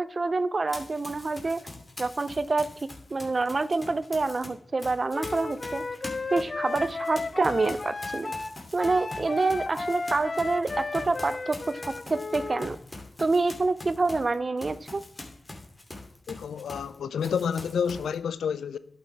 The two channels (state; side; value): normal; both; correlation 0.93